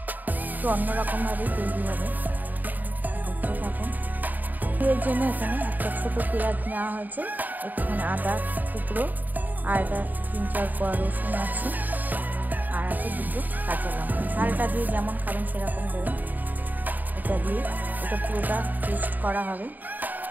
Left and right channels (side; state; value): left; late; 0.085 ms